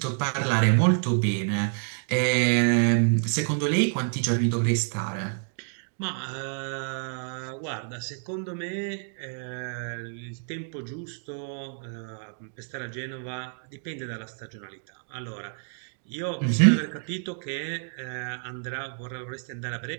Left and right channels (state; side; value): silent; left; 59 dB below the other